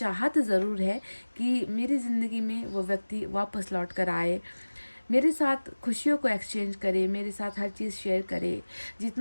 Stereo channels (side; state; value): both; inverted; correlation -1.00